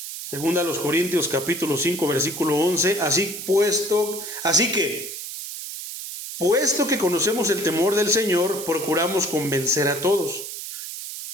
Segunda a los Corintios capítulo 5 versículo 11. Puesto que conocemos el temor del Señor, procuramos convencer a todos.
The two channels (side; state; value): right; noise; hiss, 8 dB below the sound